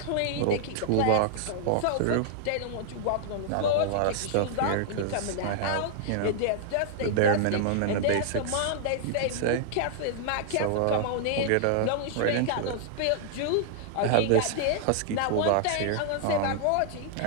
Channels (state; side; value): different; both; correlation -0.01